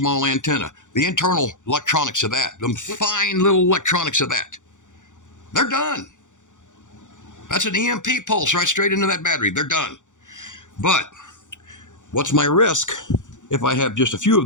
antenna. The internal electronics of that, the fine little electronics of that, they're done. That's an EMP pulse right straight into that battery. They're done. But what's my risk if I have just a few of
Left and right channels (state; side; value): late; right; 0.86 ms